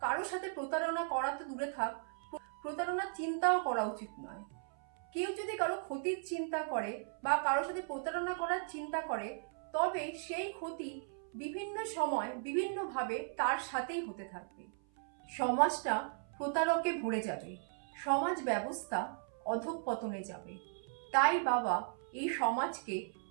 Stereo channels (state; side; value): silent; left; 53 dB below the other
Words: কারোর সাথে প্রতারণা করা তো দূরে থাক, প্রতারণার চিন্তাও করা উচিত নয়। কেউ যদি কারো ক্ষতির চিন্তা করে বা কারোর সাথে প্রতারণা করার চিন্তা করে, তবে সেই ক্ষতি বিভিন্ন সময় বিভিন্নভাবে তার সাথেই হতে থাকবে। সমাজটা প্রতারকে ভরে যাবে, সমাজ ব্যবস্থা অধঃপতনে যাবে। তাই বাবা এই সমাজকে